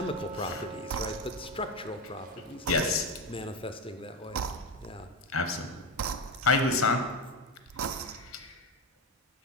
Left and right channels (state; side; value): normal; both; correlation 0.16